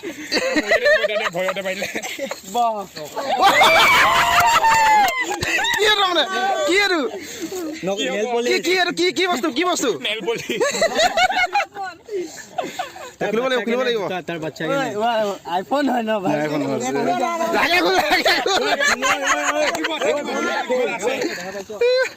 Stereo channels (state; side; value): identical; both; correlation 1.00